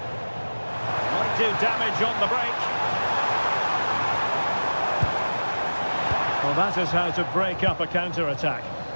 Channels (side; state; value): both; inverted; correlation -1.00